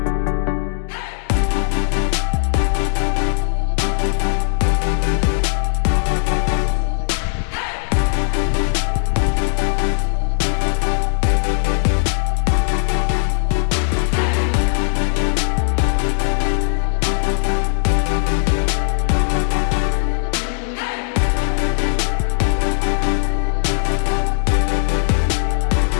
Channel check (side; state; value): right; silent; digital silence